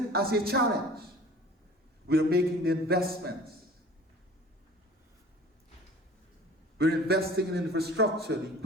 as a challenge. We are making the investments. We're investing in infrastructure, the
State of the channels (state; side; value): normal; both; correlation 0.44